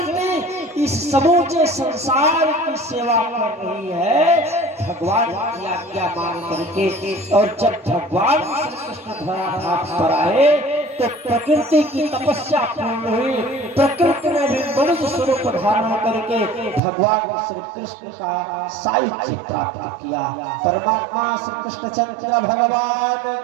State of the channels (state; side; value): drops out; left; at 16.8 s